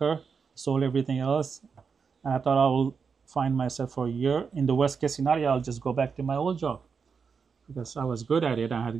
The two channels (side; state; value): left; quieter; 5.8 dB